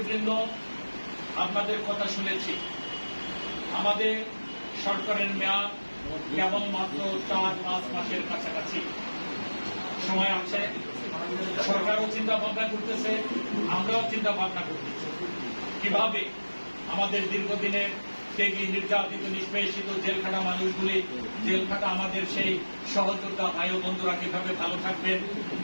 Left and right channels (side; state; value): both; inverted; correlation -1.00